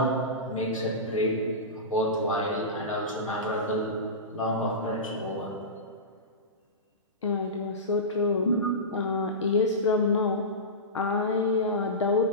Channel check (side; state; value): both; normal; correlation -0.20